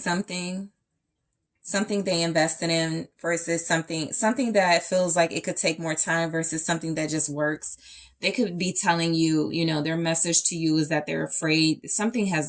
they invested in versus something that feels like it could take more time versus something that just works. They could be telling you, you know, their message to you is that they're afraid something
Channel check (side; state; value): both; identical; correlation 1.00